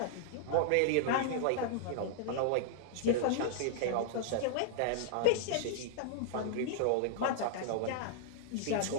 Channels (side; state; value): both; different; correlation -0.01